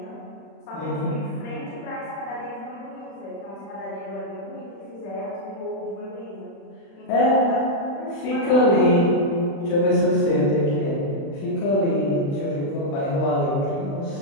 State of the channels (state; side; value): late; right; 36 ms